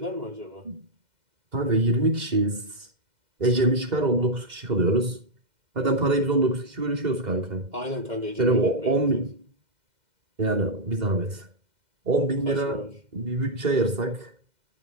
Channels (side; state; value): left; late; 2.0 ms